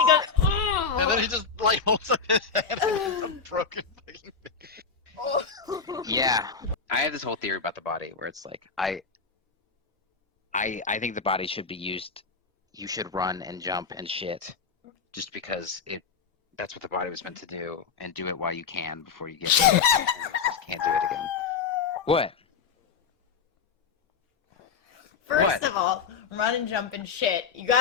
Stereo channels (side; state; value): right; quieter; 5.6 dB